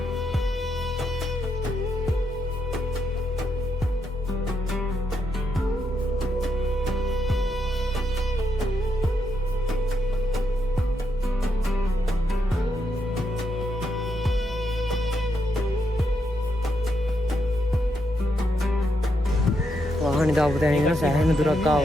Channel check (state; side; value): normal; both; correlation 0.80